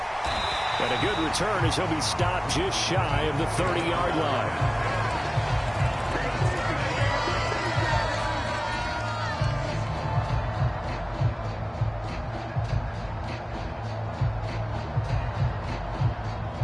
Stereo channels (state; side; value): identical; both; correlation 1.00